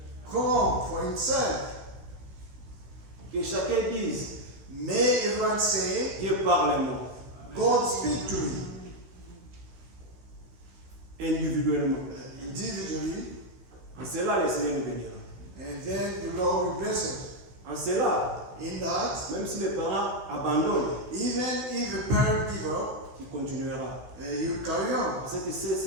come for himself. Que chacun dise, May everyone say, Dieu parle-moi, God speak to me individuellement. individually, En cela, le Seigneur nous bénira. and then the Lord will bless us. En cela, In that, même si les parents abandonnent, even if the parent give up, il continuera. you carry on. Parce que c'est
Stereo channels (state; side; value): late; left; 16 ms